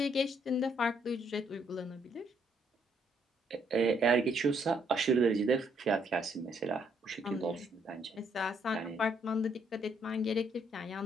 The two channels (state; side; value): normal; both; correlation 0.70